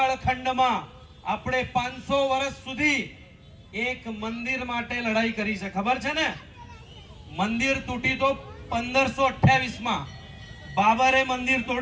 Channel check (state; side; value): identical; both; correlation 1.00